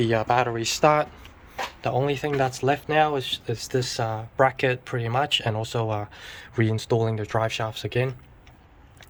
battery start. The only thing that's left now is this bracket pretty much, and also reinstalling the drive shafts again.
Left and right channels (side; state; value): both; identical; correlation 1.00